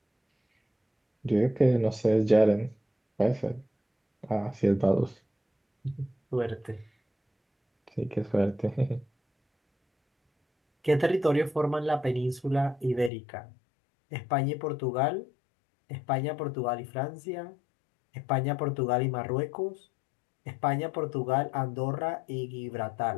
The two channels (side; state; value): right; drops out; at 13.1 s